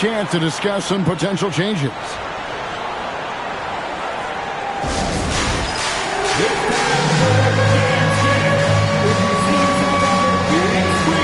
to discuss some potential changes.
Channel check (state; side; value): identical; both; correlation 1.00